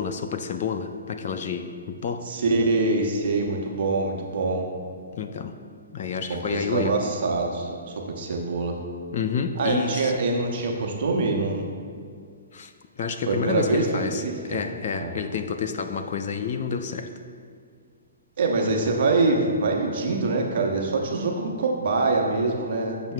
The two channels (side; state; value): both; inverted; correlation -0.46